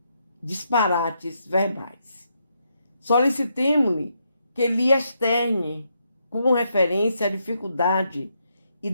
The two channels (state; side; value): inverted; both; correlation -0.79